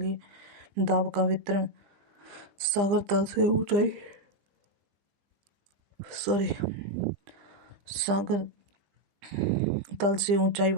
दाब का वितरण सागर तल से ऊंचाई,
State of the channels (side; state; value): left; late; 20 ms